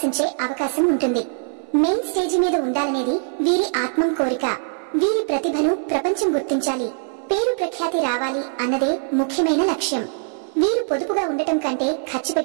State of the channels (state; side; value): silent; left; 56 dB below the other